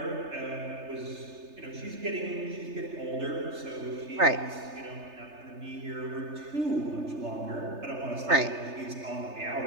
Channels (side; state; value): left; late; 3.3 ms